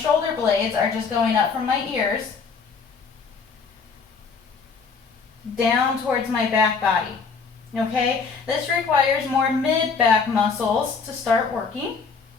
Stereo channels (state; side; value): quieter; right; 5.2 dB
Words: blades are just going up from my ears down towards my back body. Okay, this requires more mid-back muscles to start working,